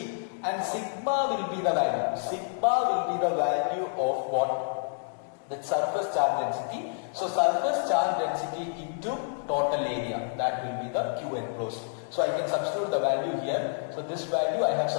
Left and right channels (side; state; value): right; silent; digital silence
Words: and sigma will be the value. Sigma will be the value of what? The surface charge density. So surface charge density into total area, that will be the Q enclosed. So I can substitute the value here. So this value I have